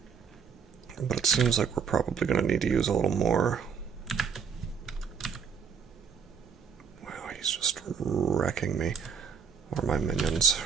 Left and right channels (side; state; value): left; quieter; 6.7 dB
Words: But it seems like we're probably going to need to use a little more. Wow, he's just wrecking me. Or my minions,